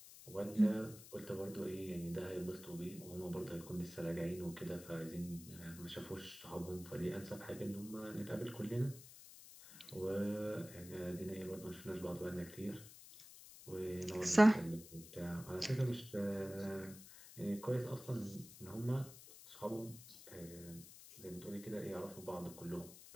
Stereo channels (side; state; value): left; noise; hiss, 16 dB below the sound